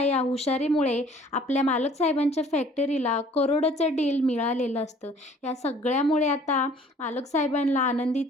या हुशारीमुळे आपल्या मालक साहेबांच्या फॅक्टरीला करोडोचं डील मिळालेलं असतं. या सगळ्यामुळे आता मालक साहेबांना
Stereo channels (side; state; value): both; normal; correlation 0.54